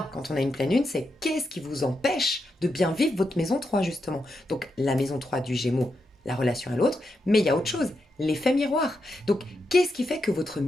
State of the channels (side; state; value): both; normal; correlation 0.85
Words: quand on a une pleine lune, c'est qu'est-ce qui vous empêche de bien vivre votre maison 3 justement. Donc la maison 3 du Gémeaux, la relation à l'autre, mais il y a autre chose, l'effet miroir. Donc qu'est-ce qui fait que votre